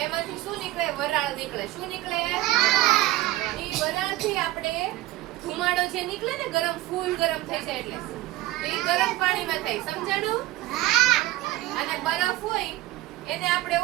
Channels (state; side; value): quieter; left; 17.1 dB